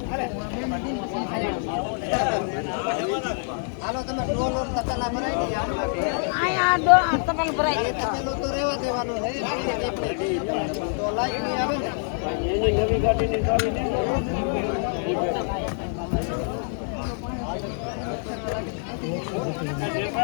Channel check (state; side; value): silent; right; 55 dB below the other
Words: હાલો તમે ડોલ ઓર તતલા ભરાઈ દે આયા ડોલ તતલ ભરાઈ દે તતલો તો રહેવા દેવાનો છે તો લાઈટ ની આવે ને એની નવી ગાડીની ચાવી દે